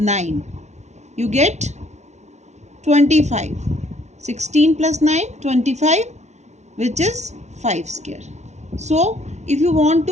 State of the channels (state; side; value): late; left; 0.33 ms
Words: you get 25. 16 plus 9, 25, which is 5 square. So if you want